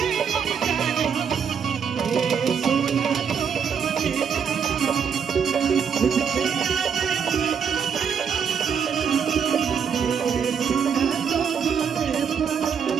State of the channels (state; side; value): quieter; left; 7.1 dB